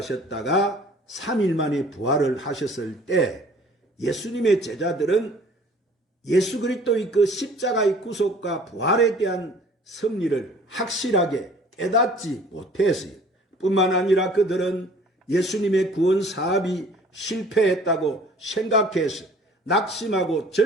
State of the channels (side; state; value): both; normal; correlation 0.51